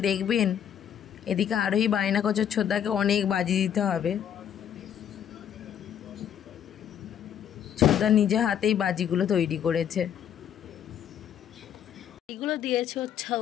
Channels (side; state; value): right; quieter; 9.3 dB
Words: দেখবেন। এদিকে আরোহী বায়না করছে ছোদ্দাকে অনেক বাজি দিতে হবে। ছোদ্দা নিজে হাতেই বাজিগুলো তৈরি করেছে। এইগুলো দিয়েছে